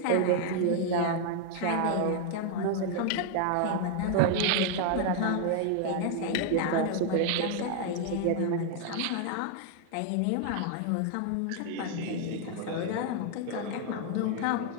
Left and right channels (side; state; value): both; different; correlation 0.00